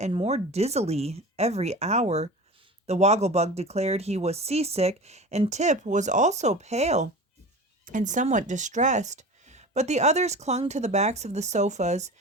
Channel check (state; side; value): normal; both; correlation 0.34